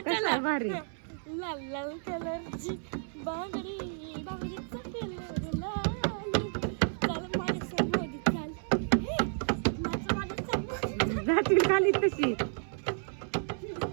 आहे भारी. लाल लाल कलरची बांगडी, बांगडीचा कलर लाल. चल माझ्या समोर चल, माझ्या समोर जातील खाली तशी.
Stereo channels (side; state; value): left; silent; 57 dB below the other